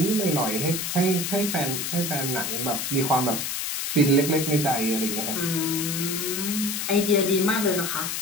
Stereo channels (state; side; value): noise; left; hiss, 2 dB below the sound